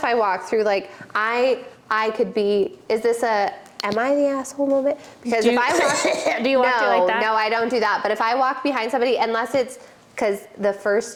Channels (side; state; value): both; identical; correlation 1.00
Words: I walk through, like I could be. Am I the asshole moment? Because if I walk, do you walk through like that? No, I don't do that. But if I walk behind somebody, unless it's because